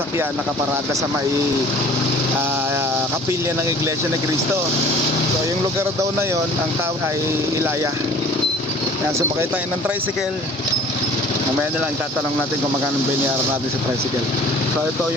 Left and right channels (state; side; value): normal; both; correlation 0.48